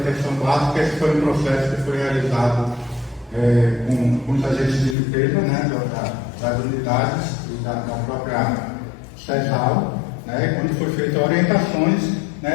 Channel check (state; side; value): drops out; right; at 5.0 s